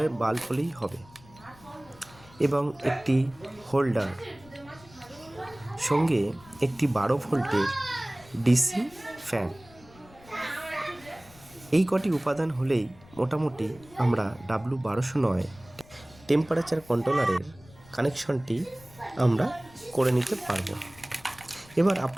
বাল্ব হলেই হবে, এবং একটি হোল্ডার, সঙ্গে একটি 12 ভোল্টের ডিসি ফ্যান। এই কটি উপাদান হলেই মোটামুটি আমরা W1209 টেম্পারেচার কন্ট্রোলারের কানেকশনটি আমরা করে নিতে পারবো। এবার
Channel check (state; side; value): noise; left; rumble, 24 dB below the sound